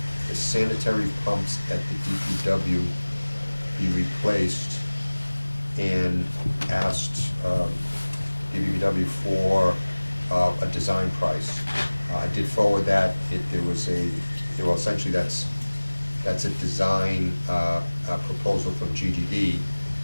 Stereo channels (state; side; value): inverted; both; correlation -1.00